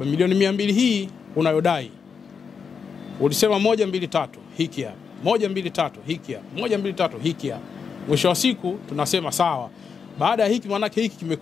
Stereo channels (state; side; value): quieter; right; 6.1 dB